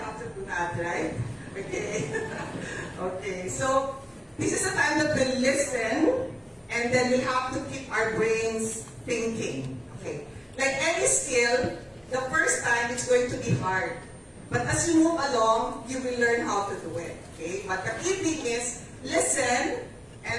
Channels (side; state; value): both; identical; correlation 1.00